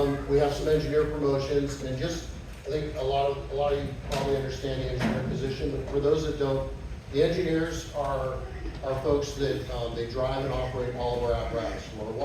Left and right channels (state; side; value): identical; both; correlation 1.00